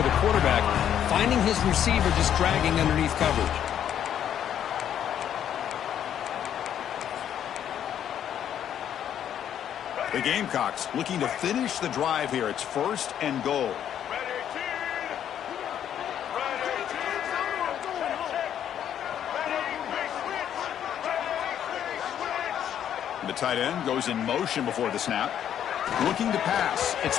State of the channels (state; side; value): quieter; right; 9.8 dB